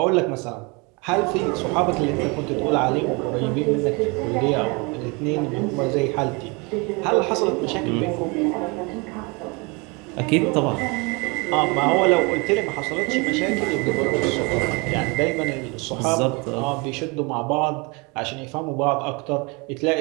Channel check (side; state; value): left; quieter; 29.0 dB